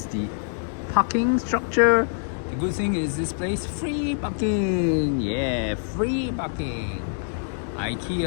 the parking structure. The good thing is this place free parking. Yeah, free parking.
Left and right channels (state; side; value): silent; right; digital silence